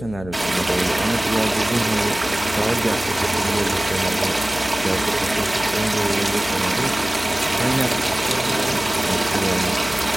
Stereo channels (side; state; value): left; noise; hum, 14 dB below the sound